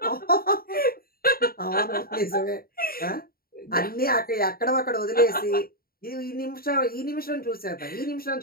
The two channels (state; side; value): late; right; 0.43 ms